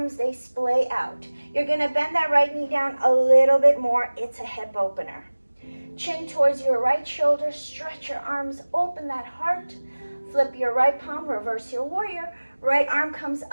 they splay out. You're going to bend that right knee down a little bit more. It's a hip opener. Chin towards your right shoulder, stretch your arms, open that heart, flip your right palm, reverse your warrior, right arm comes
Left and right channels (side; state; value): both; inverted; correlation -1.00